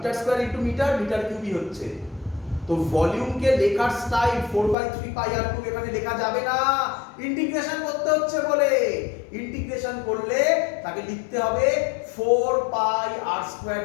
square into metre, মিটার কিউবই হচ্ছে। তো ভলিউমকে লেখার স্টাইল 4/3 পাই আর কিউব এখানে লেখা যাবে না, ইন্টিগ্রেশন করতে হচ্ছে বলে। ইন্টিগ্রেশন করলে তাকে লিখতে হবে 4 পাই আর স্কয়ার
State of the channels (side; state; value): right; drops out; at 4.8 s